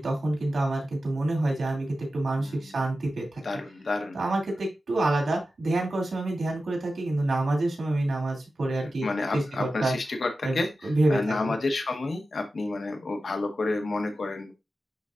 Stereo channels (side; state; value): both; normal; correlation 0.93